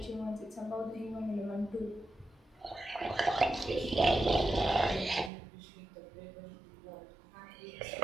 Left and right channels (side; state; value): left; drops out; at 5.3 s